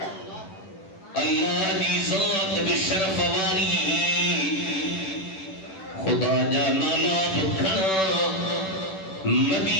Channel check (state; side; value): late; right; 10 ms